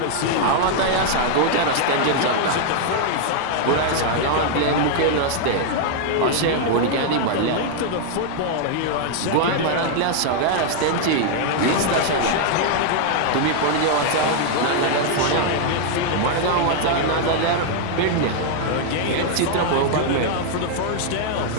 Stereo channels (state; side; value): different; both; correlation 0.00